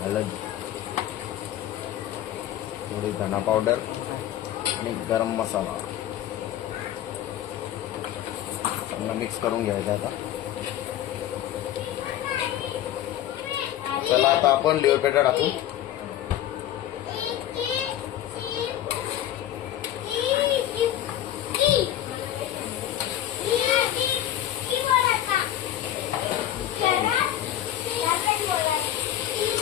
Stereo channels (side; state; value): right; quieter; 12.1 dB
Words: हळद, थोडी धना पावडर आणि गरम मसाला चांगला मिक्स करून घ्यायचा. आता चला आता आपण लिव्हर पेटा टाकू.